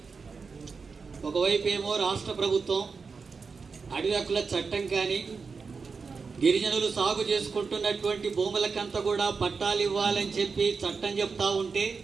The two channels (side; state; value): left; quieter; 5.0 dB